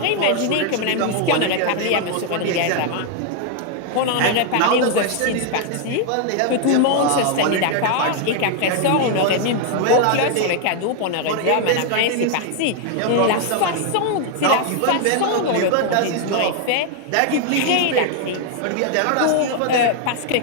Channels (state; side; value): different; both; correlation 0.00